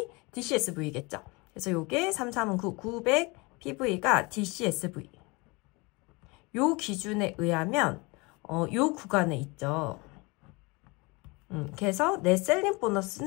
DCSV겠죠. 그래서 요게 339, 900 PV가 DCSV. 요 기준에 의하면 요 구간에 있죠. 그래서 내 셀링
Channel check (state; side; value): quieter; right; 26.5 dB